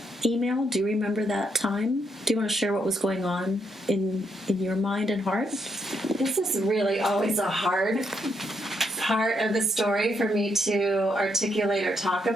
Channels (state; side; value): normal; both; correlation 0.77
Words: email? Do you remember that time? Do you want to share what was going on in your mind and heart? This is really always a hard part of the story for me to articulate or talk